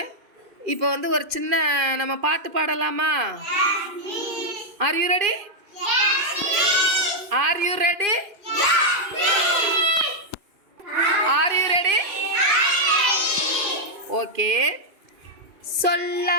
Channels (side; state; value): left; late; 2.5 ms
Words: இப்போ வந்து ஒரு சின்ன நம்ம பாட்டு பாடலாமா? Are you ready? Are you ready? Are you ready? Okay.